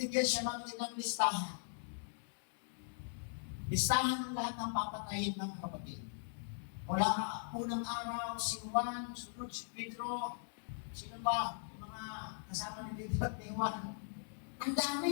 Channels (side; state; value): right; silent; digital silence